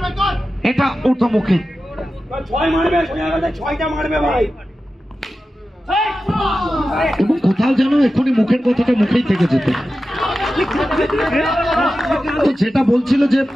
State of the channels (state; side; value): normal; both; correlation 0.93